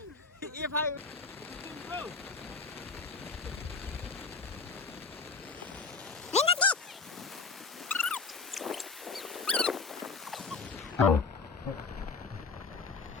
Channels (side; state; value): right; quieter; 4.6 dB